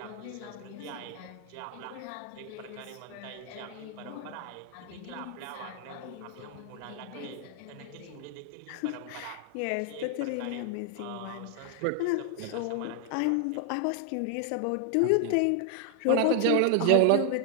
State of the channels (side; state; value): both; different; correlation 0.00